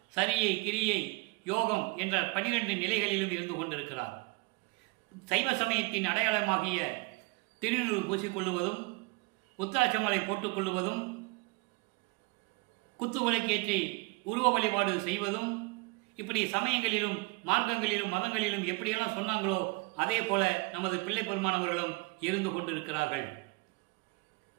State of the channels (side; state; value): left; quieter; 27.0 dB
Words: சரியை, கிரியை, யோகம் என்ற 12 நிலைகளிலும் இருந்து கொண்டிருக்கிறார். சைவ சமயத்தின் அடையாளமாகிய திருநூறு பூசிக்கொள்ளுவதும், உத்தராட்சமாலை போட்டுக்கொள்ளுவதும், குத்து விளக்கேற்றி உருவ வழிபாடு செய்வதும், இப்படி சமயங்களிலும் மார்க்கங்களிலும் மதங்களிலும் எப்படியெல்லாம் சொன்னாங்களோ அதே போல நமது பிள்ளை பெருமானவர்களும் இருந்து கொண்டிருக்கிறார்கள்.